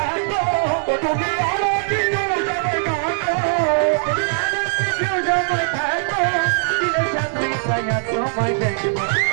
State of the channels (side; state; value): left; silent; 66 dB below the other